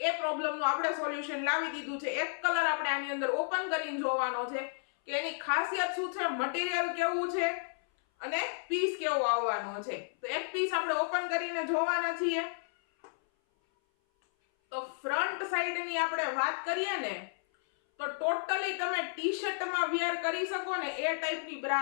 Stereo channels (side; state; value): right; silent; 56 dB below the other